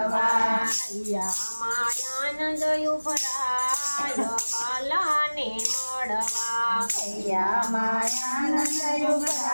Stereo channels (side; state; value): both; inverted; correlation -1.00